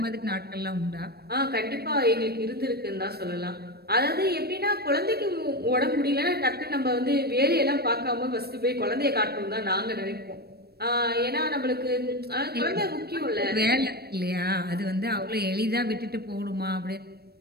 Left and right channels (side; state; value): left; late; 0.46 ms